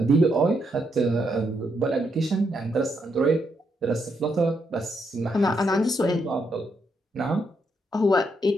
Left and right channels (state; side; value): normal; both; correlation 0.78